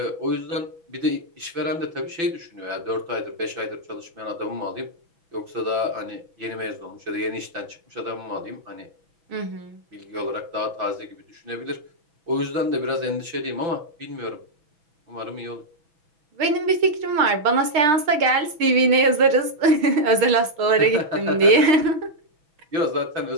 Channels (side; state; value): left; late; 6.5 ms